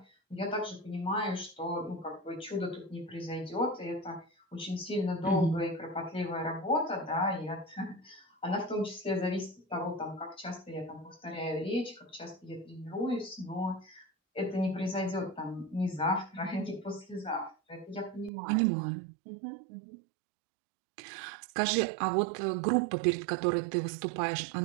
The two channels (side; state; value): left; drops out; at 18.3 s